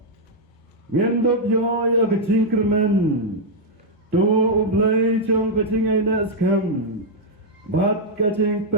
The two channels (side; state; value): both; normal; correlation -0.03